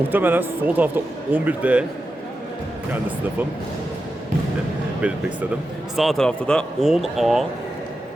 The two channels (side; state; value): both; normal; correlation 0.90